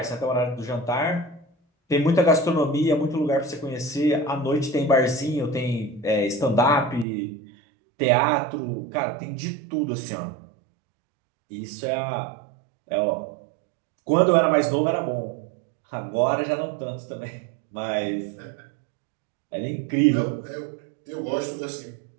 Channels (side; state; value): left; drops out; at 7.1 s